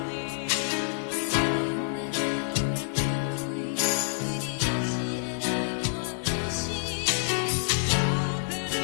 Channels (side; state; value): right; silent; digital silence